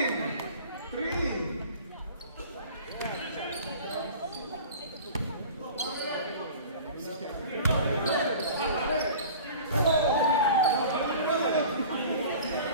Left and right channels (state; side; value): inverted; both; correlation -0.41